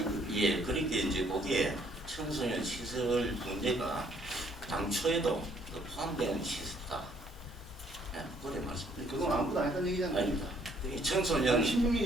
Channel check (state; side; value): normal; both; correlation 0.65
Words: 예, 그러니까 이제 거기에 청소년 시설 문제가 당초에도 그 포함되는 시설이다. 예, 그래 말씀드립니다. 그건 아무도 안 했다는 얘기잖아요. 아닙니다. 그 청소년 16년